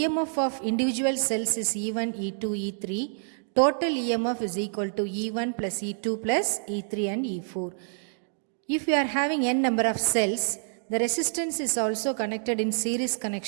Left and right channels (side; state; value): left; silent; digital silence